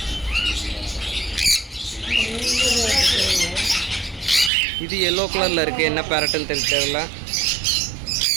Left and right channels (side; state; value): left; drops out; at 4.5 s